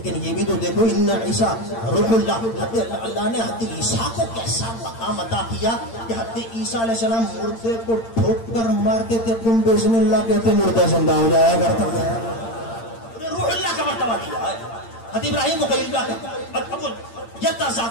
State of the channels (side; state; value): right; late; 8.8 ms